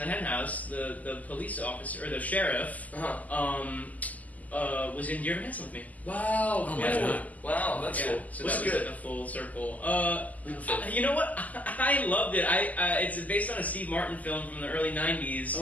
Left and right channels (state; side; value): late; right; 0.077 ms